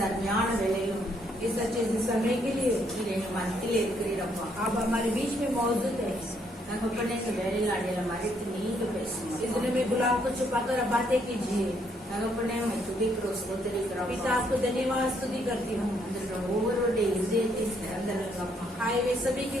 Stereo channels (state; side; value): normal; both; correlation 0.71